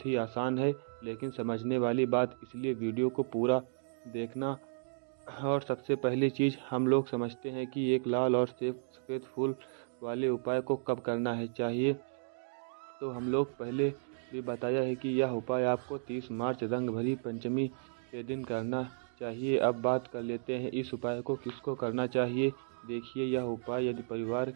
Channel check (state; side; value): silent; left; digital silence